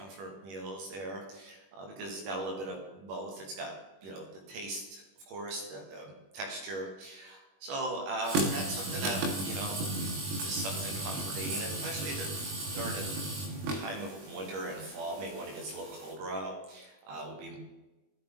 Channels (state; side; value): late; left; 21 ms